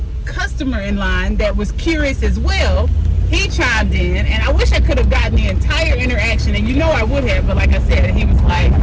customer in line that was curious as well. He chimed in, and I wish I could have gotten the entire interaction, and you know I would have, but like I said, he was like,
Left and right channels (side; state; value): both; identical; correlation 1.00